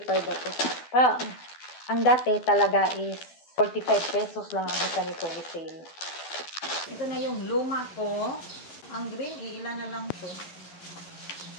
ako. Pero ang dati talaga is 45 pesos lang ang isa nito resale. Ito na yung luma ko. Ang green, ilan na lang ito.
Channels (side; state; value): right; late; 12 ms